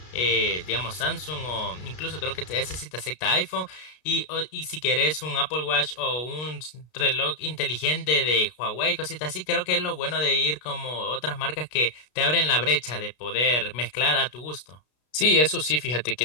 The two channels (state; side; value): late; right; 33 ms